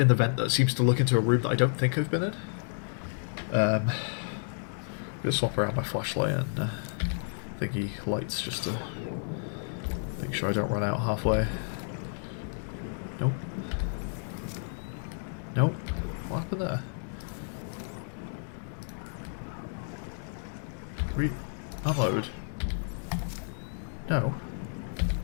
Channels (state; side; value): silent; right; digital silence